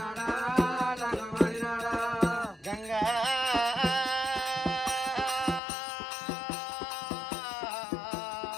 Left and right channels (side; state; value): right; drops out; at 5.6 s